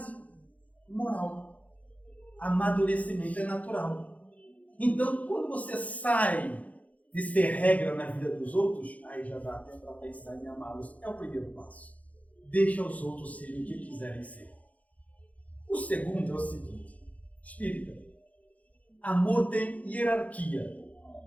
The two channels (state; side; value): late; right; 0.070 ms